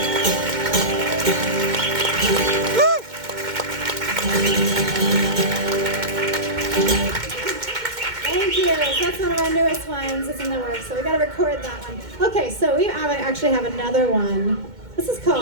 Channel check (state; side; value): late; left; 2.1 ms